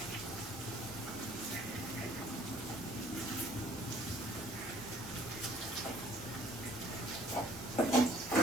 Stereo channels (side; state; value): both; normal; correlation 0.58